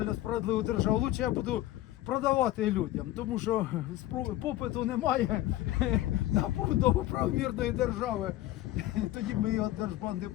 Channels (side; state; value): right; quieter; 15.2 dB